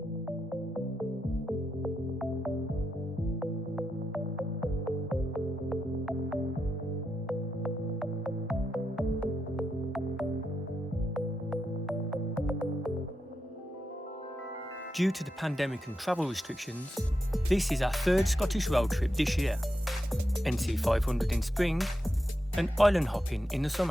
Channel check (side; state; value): both; normal; correlation 0.86